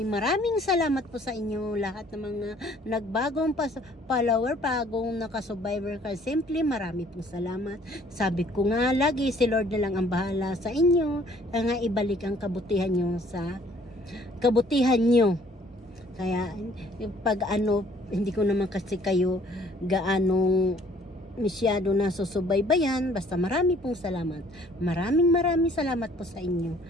salamat po sa inyo lahat ng mga nagbagong follower, bagong naka-survivor ka. Simply marami pong salamat. Sabi ko nga lagi, si Lord na lang ang bahala sa inyo, nga ibalik ang kabutihan nyo sa kabutihan nyo. Kaya pag hindi ko naman kasi kayo gaanong masyado na susubaybayan, basta marami pong salamat. Maraming salamat po sa inyo.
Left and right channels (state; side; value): normal; both; correlation 0.58